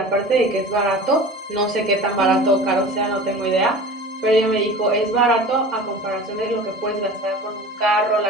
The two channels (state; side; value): normal; both; correlation 0.38